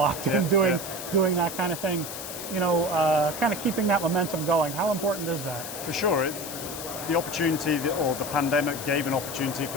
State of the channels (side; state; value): left; noise; hiss, 9 dB below the sound